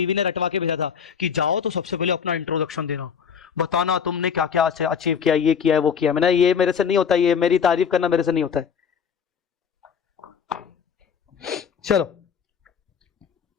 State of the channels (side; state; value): right; quieter; 7.0 dB